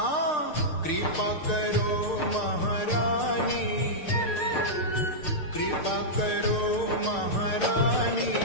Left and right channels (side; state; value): right; late; 6.6 ms